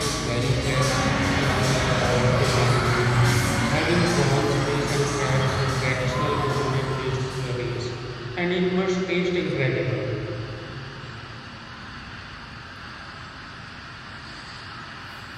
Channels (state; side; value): identical; both; correlation 1.00